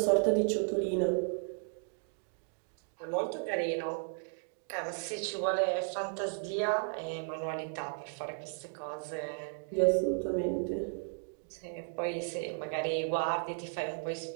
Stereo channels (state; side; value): silent; left; 55 dB below the other